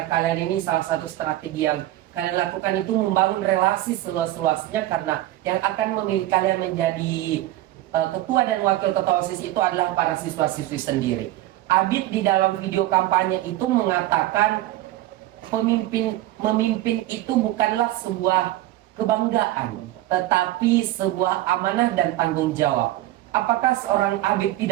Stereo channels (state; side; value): quieter; left; 15.4 dB